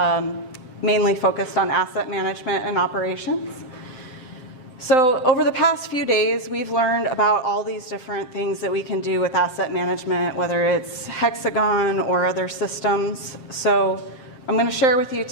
mainly focused on asset management and operations. So over the past few days, we've learned about all these different things that we can do with asset management, whether it's HxGN or other systems. So I'm going to share with you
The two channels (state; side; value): late; right; 7.7 ms